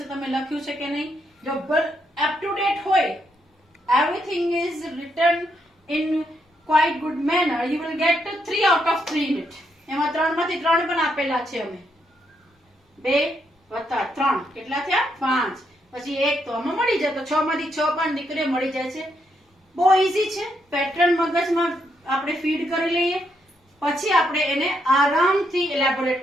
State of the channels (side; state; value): both; normal; correlation 0.77